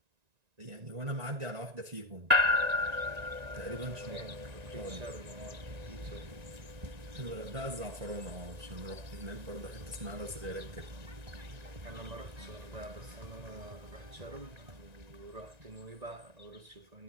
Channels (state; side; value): late; left; 1.9 ms